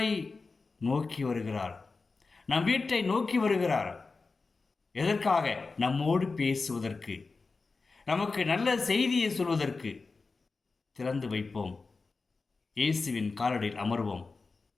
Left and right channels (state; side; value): quieter; right; 4.1 dB